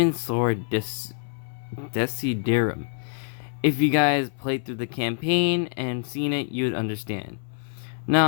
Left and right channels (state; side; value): silent; right; 61 dB below the other